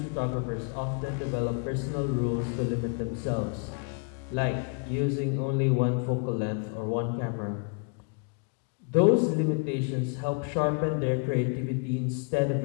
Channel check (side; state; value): right; quieter; 39.1 dB